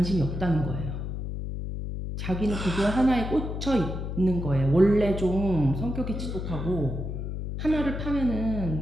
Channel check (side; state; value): left; noise; hum, 5 dB below the sound